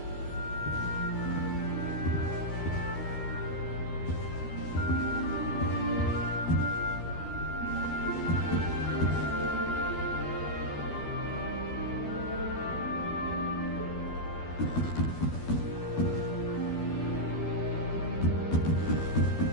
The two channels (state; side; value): late; right; 12 ms